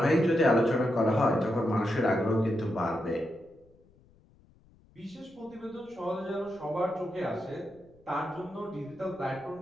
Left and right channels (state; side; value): noise; left; rumble, 29 dB below the sound